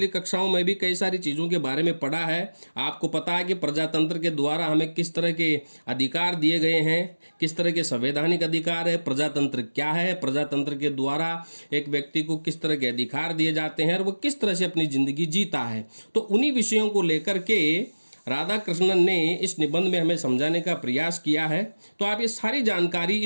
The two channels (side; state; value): both; inverted; correlation -1.00